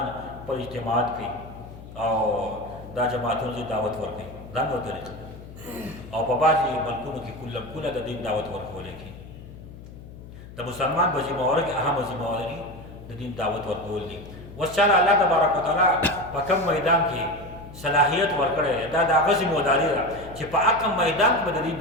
پر اجتماعات کوي او دا جماعتونو ته دعوت ورکوي، دا نو طریقه. او په بعضې ملکونو کې کله د دین دعوت ورکولی کېږي. د مسلمان په ذمهواره کې اهمه ذمهواري د دین دعوت ورکول دي. اوس چاله الله تبارک وتعالی په کوم میدان کې صلاحیت ورکړی دی، دا د هغه ذمهداري ده چې په هغه میدان کې به د دین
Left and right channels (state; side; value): noise; left; hum, 16 dB below the sound